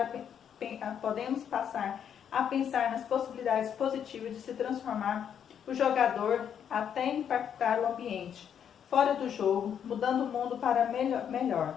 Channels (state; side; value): quieter; right; 8.5 dB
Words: a pensar nas possibilidades positivas de se transformar o jogador até impactar o ambiente fora do jogo, mudando o mundo para melhor.